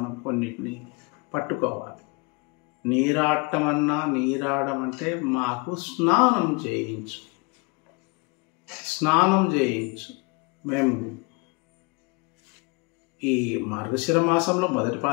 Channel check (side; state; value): right; quieter; 29.3 dB